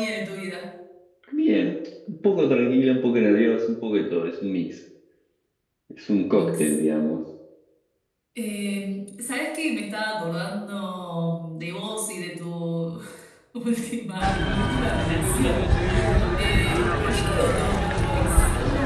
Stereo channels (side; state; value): both; identical; correlation 1.00